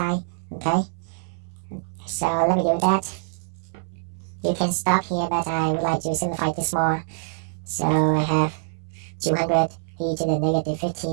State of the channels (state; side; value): silent; left; 61 dB below the other